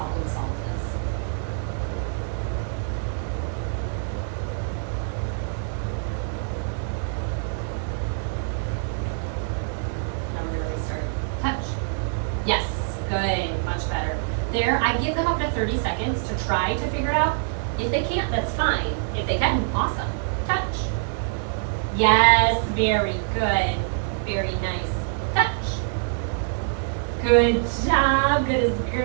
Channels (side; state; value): left; silent; 62 dB below the other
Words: solve this. Now we're gonna restart. Touch. Yes, good, much better. There, I give them up to 30 seconds to try to figure it out. If they can't, that's fine. If they can, awesome. Touch. Yes, very good. Very nice. Touch. Good job, good as